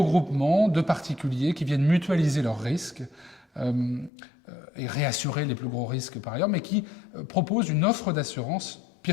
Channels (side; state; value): right; drops out; at 4.1 s